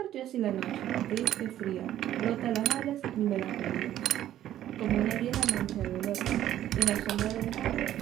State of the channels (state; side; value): quieter; left; 12.3 dB